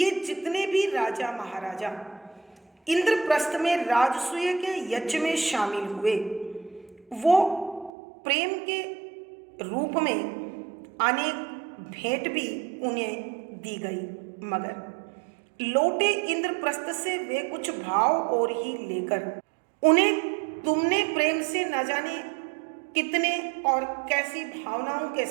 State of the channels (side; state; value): left; drops out; at 7.9 s